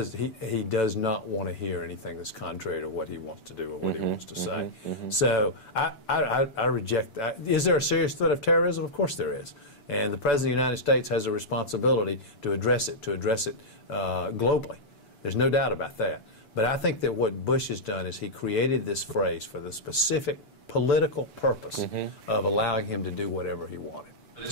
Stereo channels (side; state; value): right; late; 6.9 ms